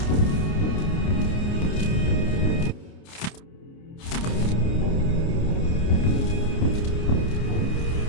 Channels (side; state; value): right; late; 29 ms